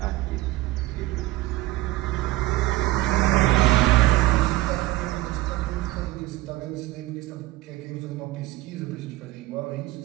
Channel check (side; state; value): left; quieter; 17.9 dB